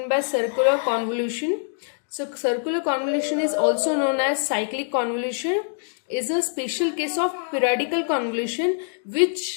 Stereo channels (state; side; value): silent; right; digital silence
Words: by circular convolution. So circular convolution is also known as cyclic convolution, is a special case of periodical convolution,